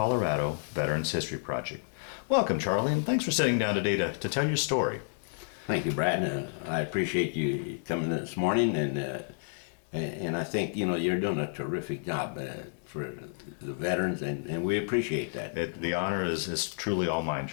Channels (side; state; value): right; silent; 56 dB below the other